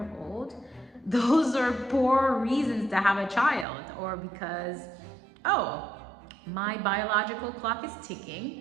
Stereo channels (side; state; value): left; drops out; at 3.7 s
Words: old. Those are poor reasons to have a child, or because, oh, my biological clock is